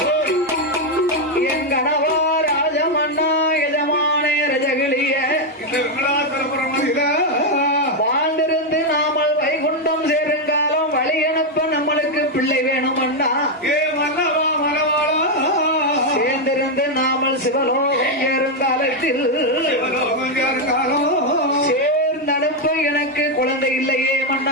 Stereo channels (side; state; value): both; normal; correlation 0.03